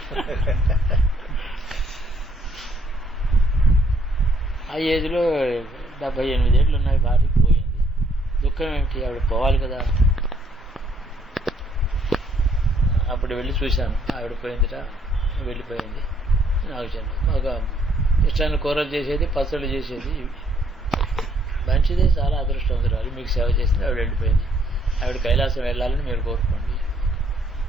ఆ ఏజ్లో 78 ఏళ్ళు ఉన్నాయి, భార్యకి పోయింది. దుఃఖం ఏమిటి, ఆవిడ పోవాలి కదా. అప్పుడు వెళ్ళి చూశాను, ఆవిడ పోయిందిట, వెళ్ళిపోయింది. నాకు చెప్పండి, మాకు ఇష్టాన్ని కూరలు చేసేది, పచ్చళ్ళు చేసేది, మంచిదే, చాలా అదృష్టవంతురాలు, మీకు సేవ చేసింది. ఆవిడ వెళ్ళిపోయింది. ఆవిడ కైలాసం వెళ్ళాలని మీరు కోరుకోండి.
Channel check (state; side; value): normal; both; correlation 0.68